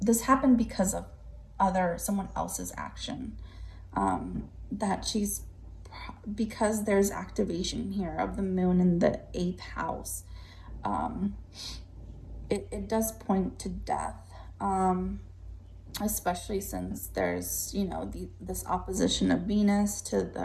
this happened because of someone else's action. That she's, because there's activation here of the moon in the 8th house. It does point to death. Especially since there's, you know, this opposition of Venus to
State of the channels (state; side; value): identical; both; correlation 1.00